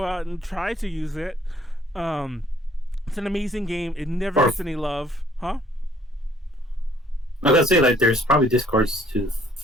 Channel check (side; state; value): both; normal; correlation 0.61